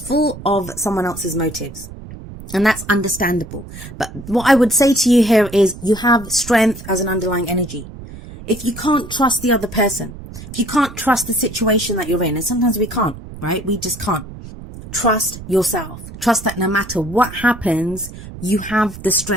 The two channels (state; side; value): noise; right; rumble, 14 dB below the sound